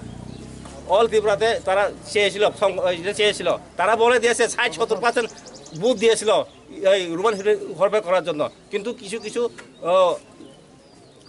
অল ত্রিপুরাতে তারা চেয়েছিল, তারা বলে দিয়েছে 60-70% বুথ দিয়েছিল এই রোমান ঘরপে করার জন্য, কিন্তু কিছু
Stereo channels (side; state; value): both; identical; correlation 1.00